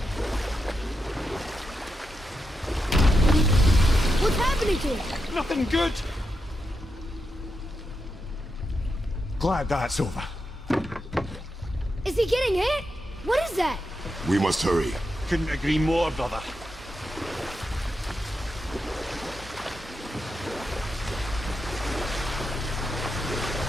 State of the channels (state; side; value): normal; both; correlation 0.86